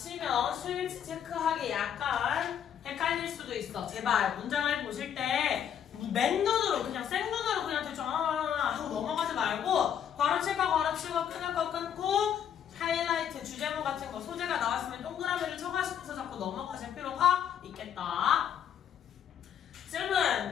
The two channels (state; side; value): quieter; right; 9.0 dB